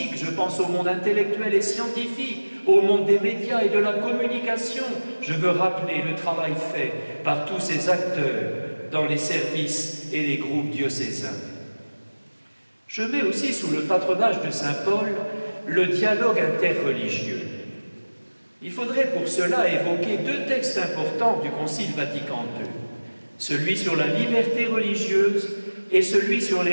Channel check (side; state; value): both; inverted; correlation -1.00